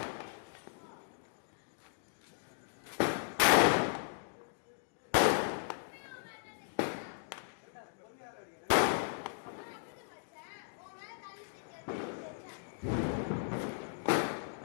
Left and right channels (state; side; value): silent; right; digital silence